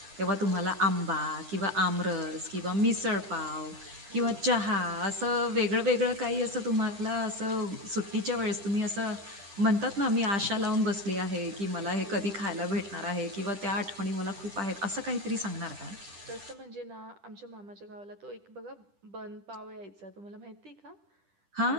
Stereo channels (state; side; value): late; left; 10 ms